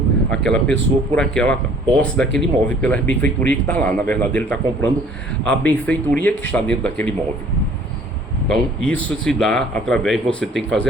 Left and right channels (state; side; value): normal; both; correlation 0.54